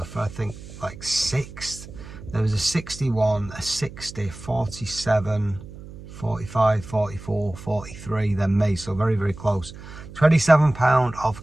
for, I think, like 6th. There was a 61, a 60, 47, 45, 44, 43, then me, so very, very close. 27 pound of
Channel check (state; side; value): noise; right; hum, 15 dB below the sound